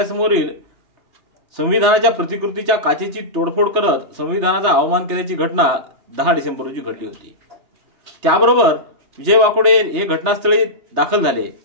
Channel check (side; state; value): left; late; 3.4 ms